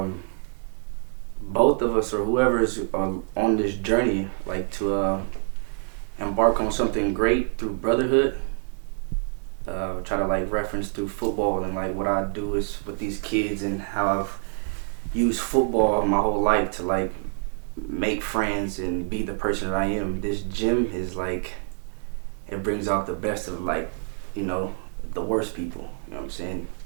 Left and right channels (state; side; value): silent; left; 61 dB below the other